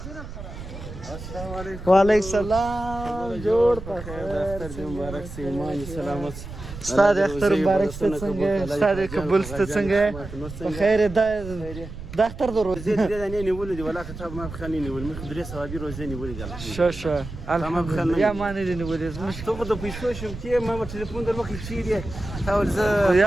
वालेकुम सलाम, जोड़ मुबारक से ईमान सलामत Ustad Akhtar Mubarak Stetsenge, Ustad Kabul Stetsenge, بخير دختر درو. زيد أنا نقول ولا كتاب ما بخليني نقول مدرسة صوابي روزاني نقول قال. شو الحمد لله يا ما ندري نقول مش تقدر بيسوي شو كي ما بتليفون در وقت شيء تاول ز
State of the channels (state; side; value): noise; right; rumble, 11 dB below the sound